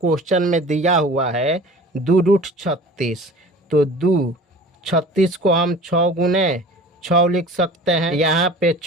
में दिया हुआ है 2√36, तो 2×36 को हम 6 गुने 6 लिख सकते हैं। यहाँ पे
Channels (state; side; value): normal; both; correlation 0.42